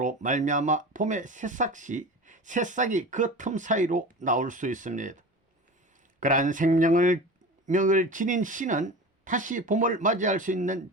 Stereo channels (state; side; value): normal; both; correlation 0.32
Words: 말미암아 봄에 새싹이 그 틈 사이로 나올 수 있습니다. 그러한 생명력을 지닌 씨는 다시 봄을 맞이할 수 있는